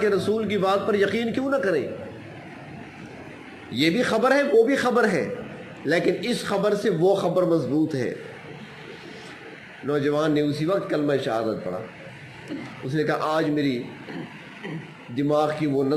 کے رسول کی بات پر یقین کیوں نہ کریں؟ یہ بھی خبر ہے، وہ بھی خبر ہے، لیکن اس خبر سے وہ خبر مضبوط ہے۔ نوجوان نے اسی وقت کلمہ شہادت پڑھا، اس نے کہا آج میری دماغ کی وہ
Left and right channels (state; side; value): identical; both; correlation 1.00